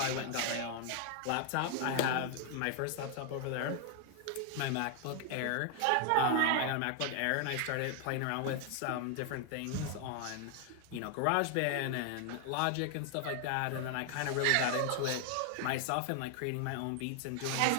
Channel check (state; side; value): different; both; correlation 0.00